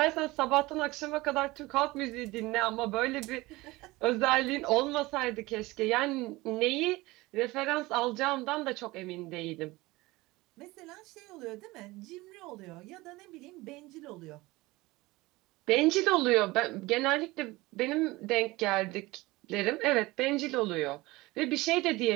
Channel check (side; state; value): left; quieter; 20.8 dB